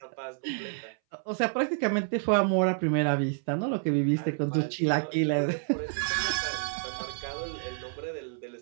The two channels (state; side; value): silent; left; 58 dB below the other